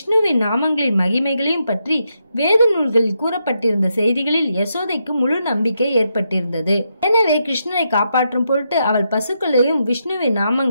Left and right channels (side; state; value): both; inverted; correlation -0.82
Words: நாமங்களின் மகிமைகளையும் பற்றி வேத நூல்களில் கூறப்பட்டிருந்த செய்திகளில் யசோதைக்கு முழு நம்பிக்கை ஏற்பட்டிருந்தது. எனவே கிருஷ்ணரை காப்பாற்றும் பொருட்டு அவள் பசுக்களையும் விஷ்ணுவின்